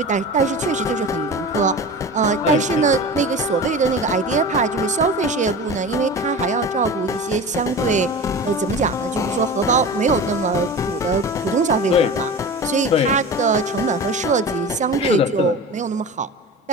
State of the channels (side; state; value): both; normal; correlation 0.32